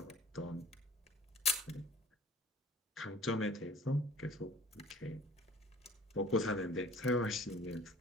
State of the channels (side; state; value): both; normal; correlation 0.47